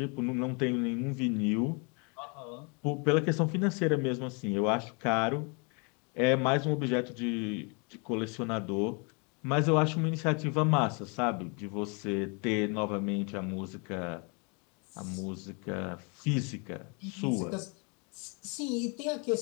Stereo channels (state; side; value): quieter; right; 34.0 dB